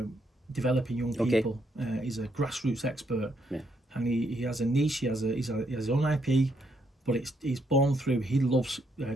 developing young people. He's a grassroots expert, and he has a niche. He has his own IP, but he's born through. He loves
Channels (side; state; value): both; normal; correlation 0.75